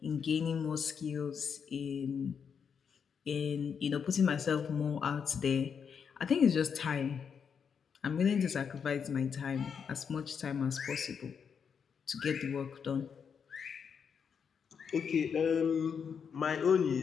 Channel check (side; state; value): right; quieter; 6.8 dB